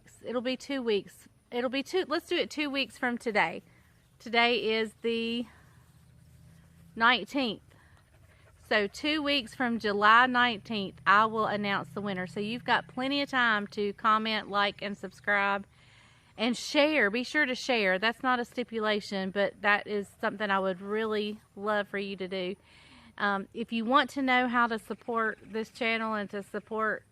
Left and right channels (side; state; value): both; identical; correlation 1.00